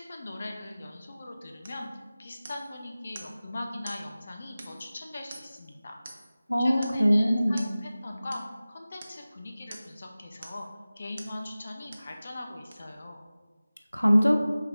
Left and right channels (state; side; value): inverted; both; correlation -0.97